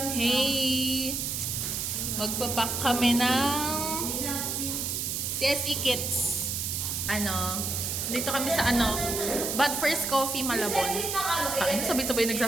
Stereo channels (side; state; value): right; noise; hiss, 2 dB below the sound